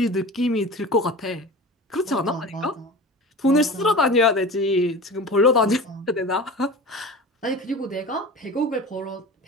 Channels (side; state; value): both; normal; correlation 0.34